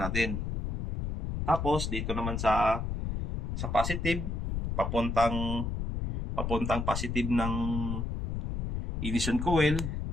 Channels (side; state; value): left; noise; rumble, 1 dB below the sound